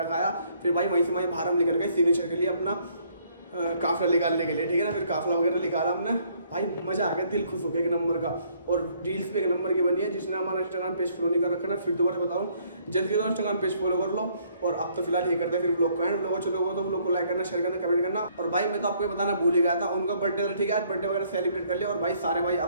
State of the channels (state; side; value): inverted; both; correlation -0.65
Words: खाया, फिर भाई वहीं से वहीं बाहर हम निकल गए सिग्नेचर के लिए अपना काफिला निकालने के लिए, ठीक है ना। फिर काफिला वगैरह निकाला हमने, भाई मजा आ गया, दिल खुश हो गया एक नंबर का। और रील्स पे एक नंबर की बनी है। जिसने हमारा इंस्टाग्राम पेज फॉलो नहीं कर रखा ना, फिर दोबारा बताऊं, जल्दी तो इंस्टाग्राम पेज फॉलो कर लो। और अब तो फिलहाल यही करते हैं, फिर ब्लॉग का एंड ब्लॉग अच्छे लोगों तो ब्लॉग को लाइक करना, शेयर करना, कमेंट करना। और भाई मैं तो आपको बताना भूल ही गया था, उनका बर्थडे था, ठीक है, आज बर्थडे वगैरह सेलिब्रेट कर लिया। और भाई सारे भाई